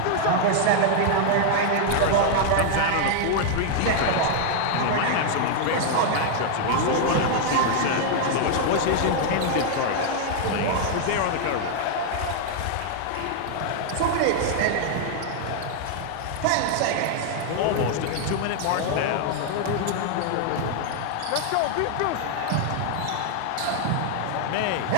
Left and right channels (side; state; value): both; different; correlation 0.00